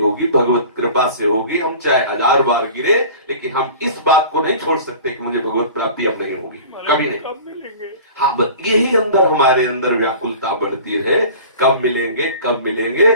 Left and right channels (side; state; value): both; inverted; correlation -0.41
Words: भगवत कृपा से होगी। हम चाहे 1000 बार गिरे, लेकिन हम इस बात को नहीं छोड़ सकते कि मुझे भगवत प्राप्ति अब नहीं होगी, कभी नहीं। कब मिलेंगे? हाँ, यही अंदर हमारे अंदर व्याकुलता बढ़ती रहे, कब मिलेंगे कब मिलेंगे,